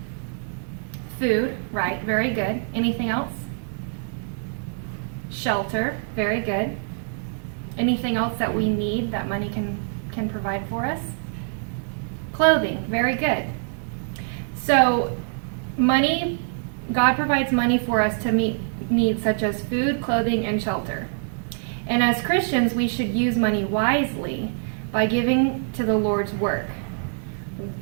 Food, right, very good. Anything else? Shelter, very good. Anything else that we need that money can provide for us? Clothing, very good. So money, God provides money for us to meet needs such as food, clothing, and shelter. And as Christians, we should use money wisely by giving to the Lord's work.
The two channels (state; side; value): silent; left; digital silence